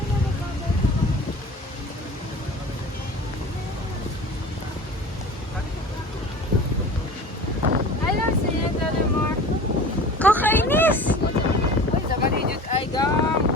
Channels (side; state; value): both; normal; correlation 0.38